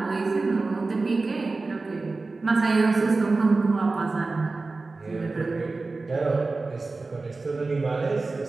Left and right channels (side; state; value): left; quieter; 3.6 dB